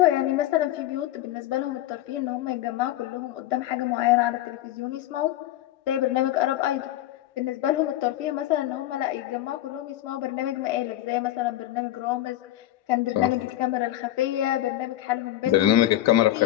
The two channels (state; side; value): quieter; right; 14.0 dB